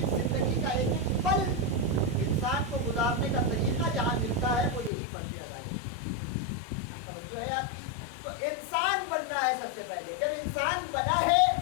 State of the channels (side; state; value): right; drops out; at 4.9 s